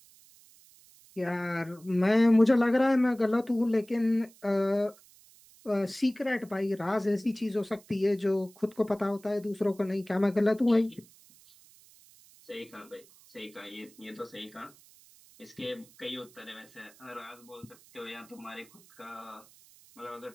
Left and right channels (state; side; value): noise; right; hiss, 26 dB below the sound